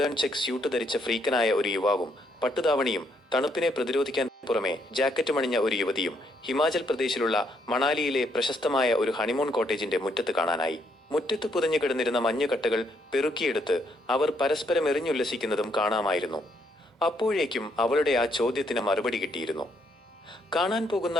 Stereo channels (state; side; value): normal; both; correlation 0.73